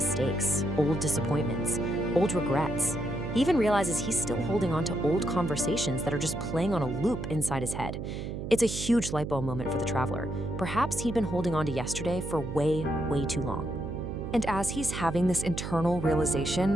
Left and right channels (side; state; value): right; noise; hum, 6 dB below the sound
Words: old disappointments, old regrets. He even realizes he's still holding on to old conversations that are just playing on a loop inside his head. It's a huge light bulb moment for the traveler. Perhaps he'd been holding on to yesterday for way, way too long. And as he's having this internal